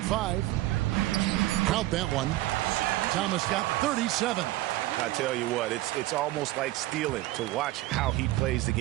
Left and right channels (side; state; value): left; quieter; 17.2 dB